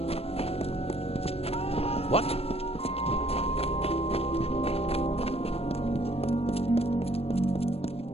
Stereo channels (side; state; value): right; late; 0.29 ms